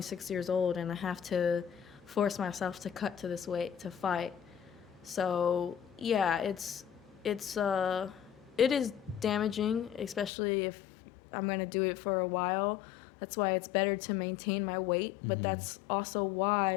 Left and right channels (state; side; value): drops out; right; at 10.3 s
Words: years old, and I have to force myself to cut to this weight to fight. So yeah, it is damaging, especially if I'm gonna do it for a while. That's why it's better to maintain my weight, but that's also